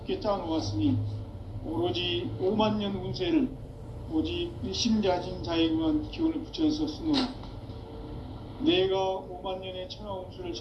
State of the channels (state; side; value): identical; both; correlation 1.00